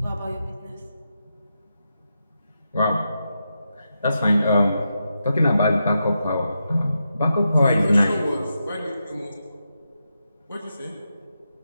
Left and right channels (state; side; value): inverted; both; correlation -0.86